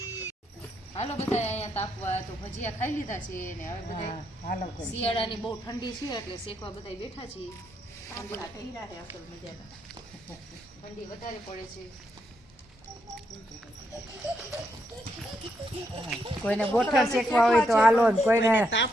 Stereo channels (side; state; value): both; normal; correlation 0.79